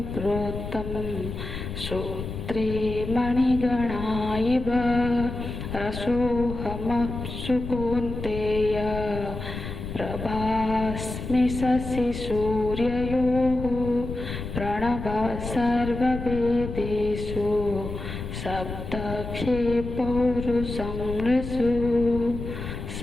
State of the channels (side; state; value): left; noise; rumble, 7 dB below the sound